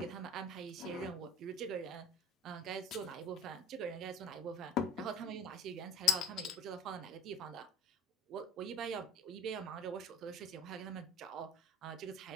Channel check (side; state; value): both; normal; correlation 0.43